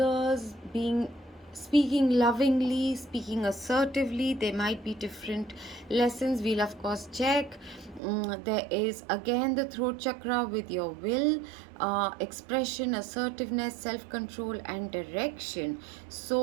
speaking lovingly, speaking assertively. There might be different lessons. We'll of course check. There is again the throat chakra with your will, expression, assertiveness, self-control and direction.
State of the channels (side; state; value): left; drops out; at 8.0 s